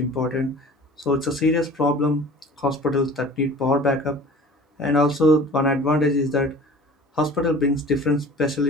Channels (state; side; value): normal; both; correlation 0.43